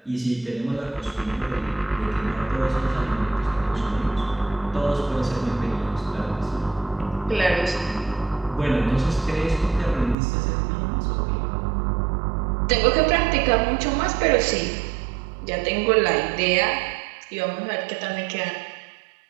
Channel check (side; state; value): left; drops out; at 10.2 s